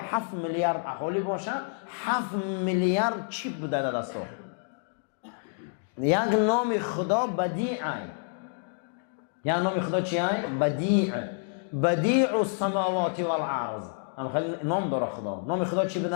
میلیارد اهالی باشه، 7 میلیارد چیپ بوده در دستا. یک نام خدا بدیعه. یا نام خدا چیه؟ بدیع. بدیع السماوات والارض. خیلی نام داره خدا. نام خدا چی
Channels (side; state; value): right; silent; digital silence